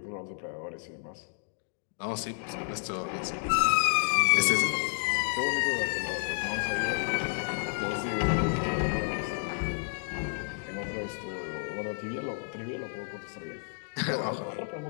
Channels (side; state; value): right; silent; 56 dB below the other